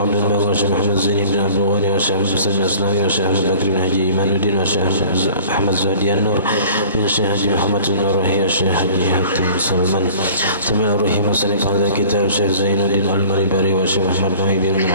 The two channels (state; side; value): inverted; both; correlation -0.46